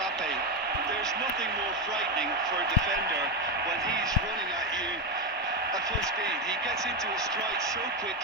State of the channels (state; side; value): normal; both; correlation 0.08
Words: There's nothing more frightening for a defender when he's running at you at full speed. He gets into a stride so